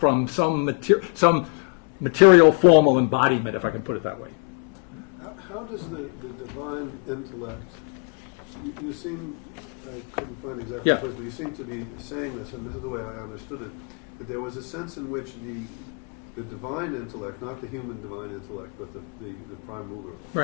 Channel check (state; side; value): quieter; right; 38.6 dB